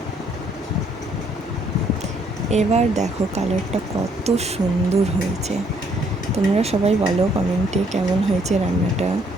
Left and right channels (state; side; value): normal; both; correlation 0.67